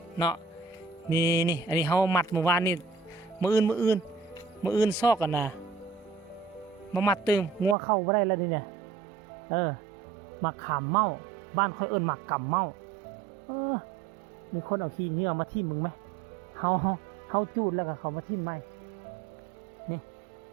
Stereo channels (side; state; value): left; drops out; at 7.8 s